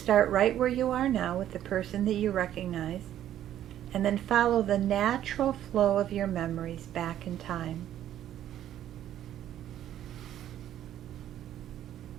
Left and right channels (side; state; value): left; quieter; 11.6 dB